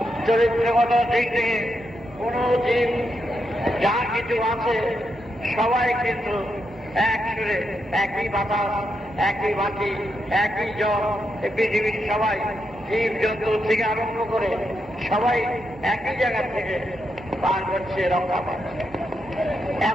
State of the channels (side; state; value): both; normal; correlation 0.83